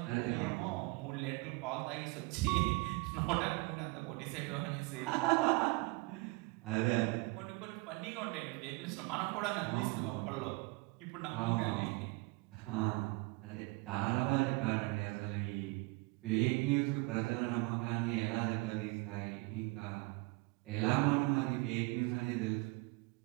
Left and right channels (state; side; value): quieter; left; 25.6 dB